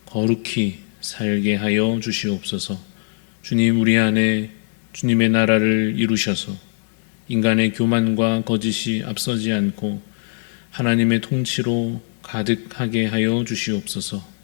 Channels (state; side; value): silent; right; digital silence